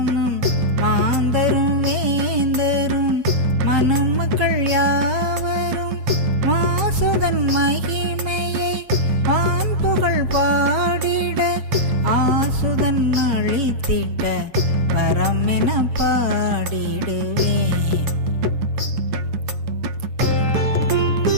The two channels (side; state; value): left; late; 7.3 ms